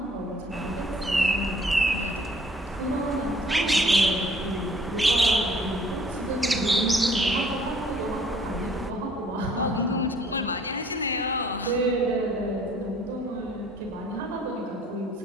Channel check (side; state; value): both; normal; correlation 0.58